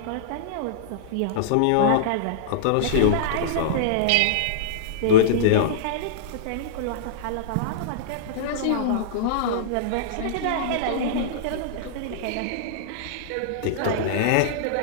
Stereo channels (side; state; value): both; different; correlation -0.02